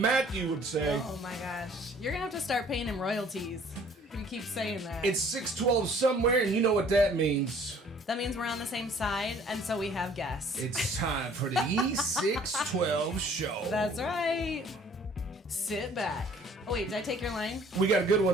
would say. Oh my gosh. You're going to have to start paying him royalties. You keep saying that. It's 6:12 somewhere, and you know what that means. That means we're on the same side, and so we have guests. It's time for the E612 show. That's right. Sit back. Oh, wait, did I take your line? We got a good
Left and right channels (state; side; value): normal; both; correlation 0.55